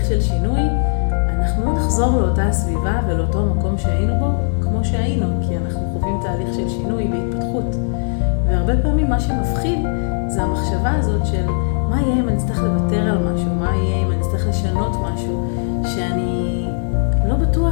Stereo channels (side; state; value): right; silent; 67 dB below the other